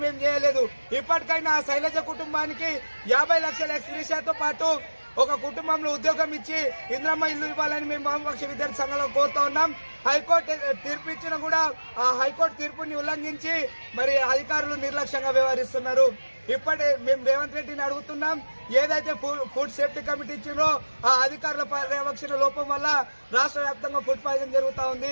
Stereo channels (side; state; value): both; inverted; correlation -1.00